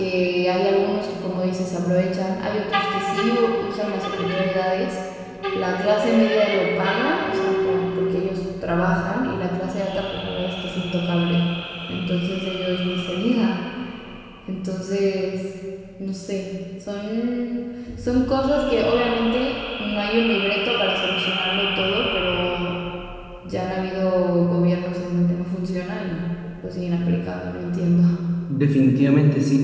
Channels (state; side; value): identical; both; correlation 1.00